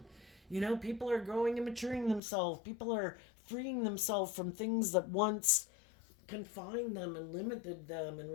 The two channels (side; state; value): right; drops out; at 2.2 s